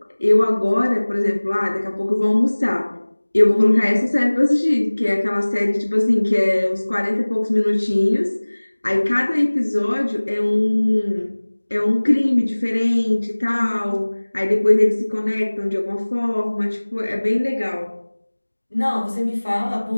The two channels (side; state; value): both; inverted; correlation -1.00